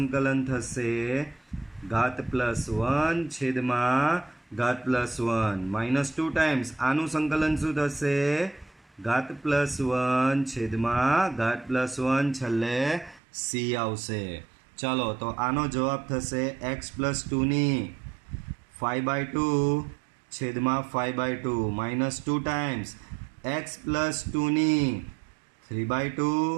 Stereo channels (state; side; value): drops out; left; at 13.2 s